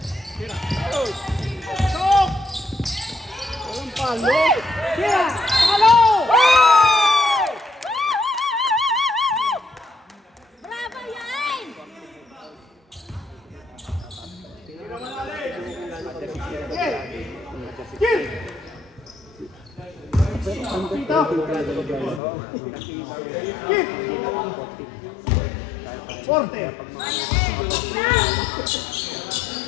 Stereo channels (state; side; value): drops out; right; at 22.2 s